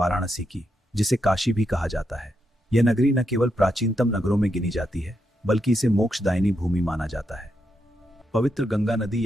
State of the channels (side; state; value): both; normal; correlation 0.83